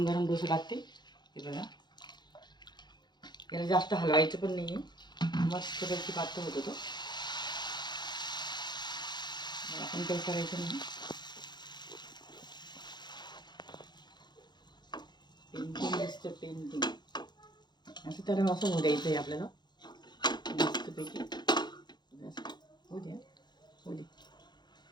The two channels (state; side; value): late; right; 0.21 ms